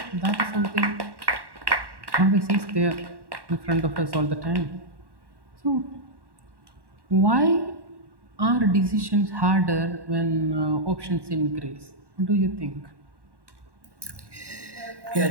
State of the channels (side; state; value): left; late; 1.1 ms